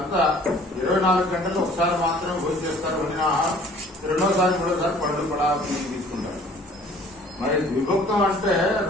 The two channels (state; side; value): normal; both; correlation 0.52